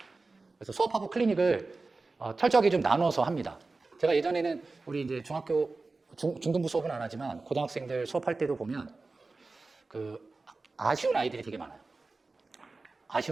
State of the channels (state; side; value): quieter; left; 3.6 dB